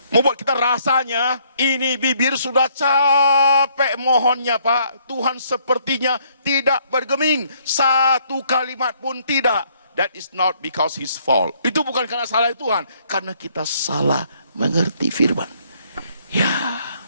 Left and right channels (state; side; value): inverted; both; correlation -0.67